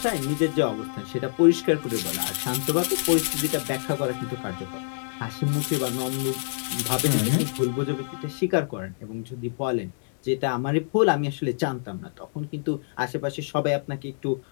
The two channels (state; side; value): silent; right; digital silence